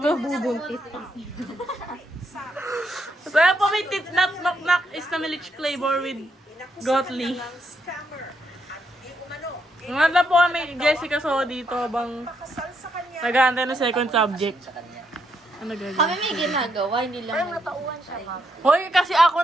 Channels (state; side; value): normal; both; correlation 0.77